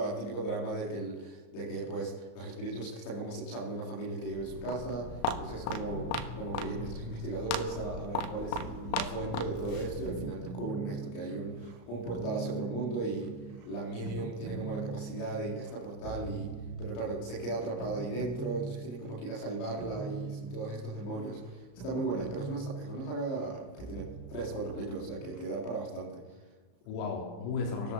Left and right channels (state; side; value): late; right; 35 ms